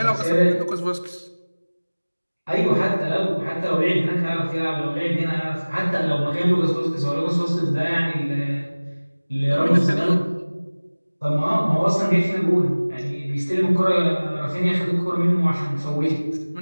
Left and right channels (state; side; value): inverted; both; correlation -1.00